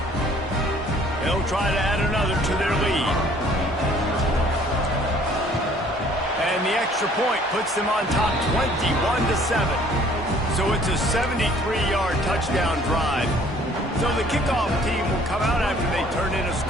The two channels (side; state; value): both; normal; correlation 0.57